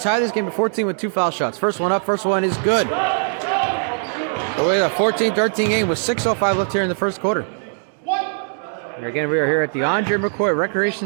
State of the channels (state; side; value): silent; left; 65 dB below the other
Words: this game to 14 with 2 foul shots. First one up, first one is good. So we have a 14-13 game with 6:05 left here in the first quarter. And again, we are here at the Andre McCoy